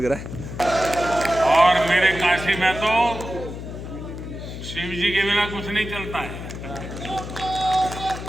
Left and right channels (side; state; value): left; noise; hum, 9 dB below the sound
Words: रहा है। और मेरे काशी में तो शिव जी के बिना कुछ नहीं चलता है।